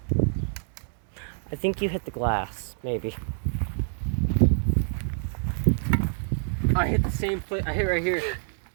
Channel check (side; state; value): left; silent; 60 dB below the other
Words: I think you hit the glass, maybe. I hit the same place. I hit right here.